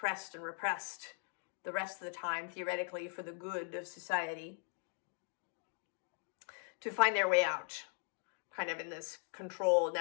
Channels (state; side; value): silent; right; 51 dB below the other